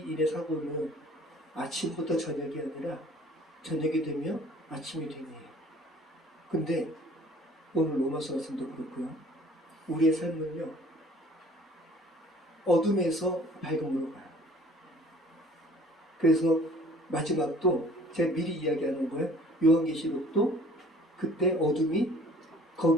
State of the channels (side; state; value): both; normal; correlation 0.52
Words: 사고는 아침부터 저녁이 아니라 저녁이 되면 아침이 되네요. 근데 오늘 로마서 말씀도 그렇고요. 우리의 삶은요, 어둠에서 밝음으로 가요. 그래서 마지막도 제가 미리 이야기하는 거예요. 요한계시록도 그때